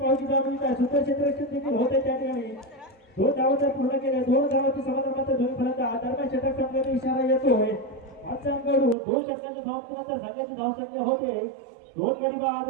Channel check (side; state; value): left; drops out; at 9.0 s